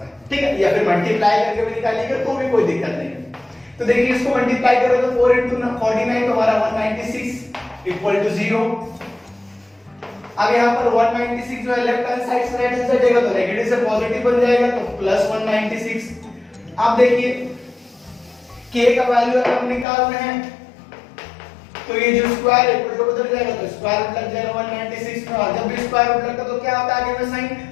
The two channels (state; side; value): drops out; right; at 19.9 s